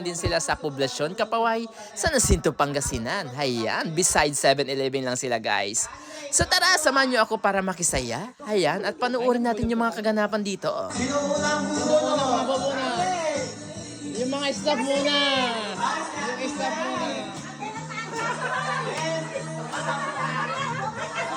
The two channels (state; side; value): identical; both; correlation 1.00